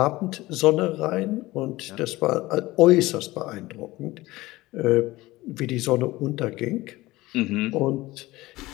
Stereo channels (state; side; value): quieter; right; 19.0 dB